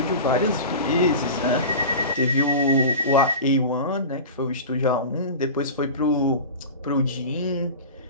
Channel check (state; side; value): inverted; both; correlation -0.31